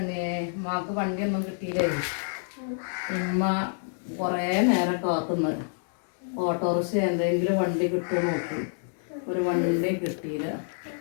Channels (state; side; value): silent; right; 60 dB below the other